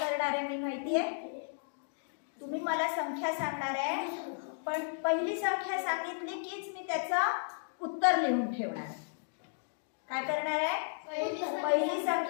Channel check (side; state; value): right; silent; digital silence